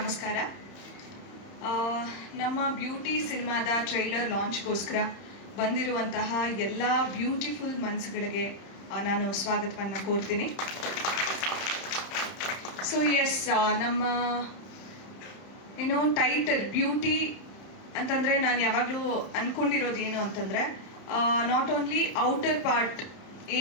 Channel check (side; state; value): right; late; 31 ms